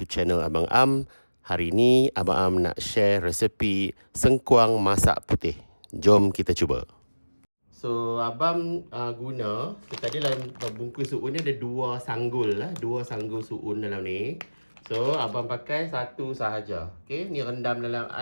channel Abang Am. Hari ni Abang Am nak share resepi sengkuang masak putih. Jom kita cuba. So Abang guna, tadi dalam bungkus suun ni ada dua sanggul lah, dua sanggul suun dalam ni. So Abang pakai satu sahaja. Okey, ni rendam dalam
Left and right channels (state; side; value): inverted; both; correlation -1.00